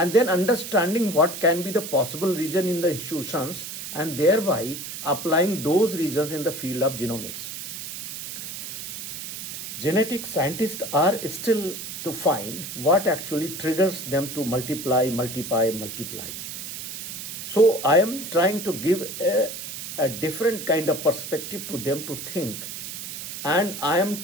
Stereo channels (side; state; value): right; noise; hiss, 8 dB below the sound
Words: then understanding what can be the possible reason in the institutions and thereby applying those reasons in the field of genomics. Genetic scientists are still to find what actually triggers them to multiply. So I am trying to give a different kind of perspective to them to think, and I am